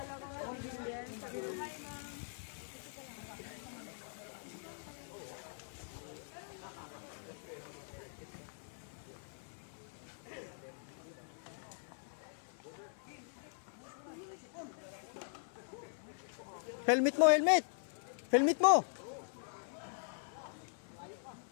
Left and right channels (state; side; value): silent; right; 50 dB below the other